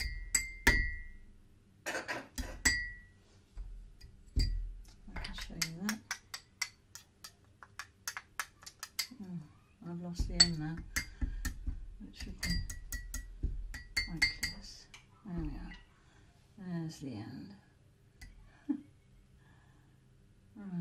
I can show you that. Oh, I've lost the end now. It should be quite close. There we are. There's the end.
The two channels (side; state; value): both; identical; correlation 1.00